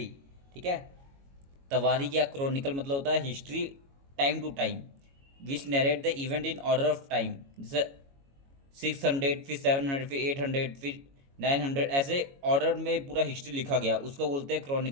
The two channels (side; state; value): left; late; 22 ms